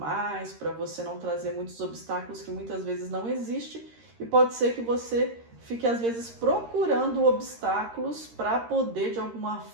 para você não trazer muitos obstáculos que muitas vezes não existem, e pode ser que você fique às vezes procurando obstáculos para poder de alguma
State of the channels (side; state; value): left; late; 13 ms